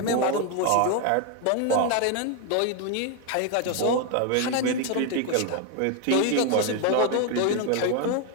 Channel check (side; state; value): both; different; correlation 0.01